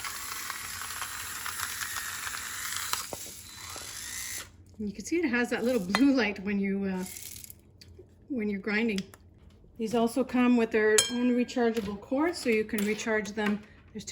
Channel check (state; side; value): identical; both; correlation 1.00